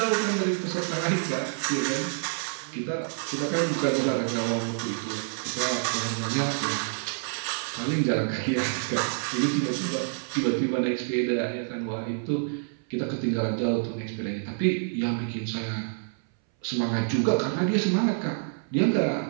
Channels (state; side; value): silent; left; 60 dB below the other